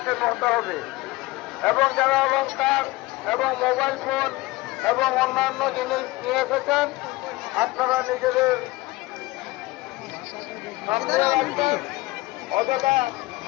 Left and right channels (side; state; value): right; quieter; 20.6 dB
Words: হতে হবে। এবং যারা অলংকার এবং মোবাইল ফোন এবং অন্যান্য জিনিস নিয়ে এসেছেন আপনারা নিজেদের সামনে রাখবেন। অযথা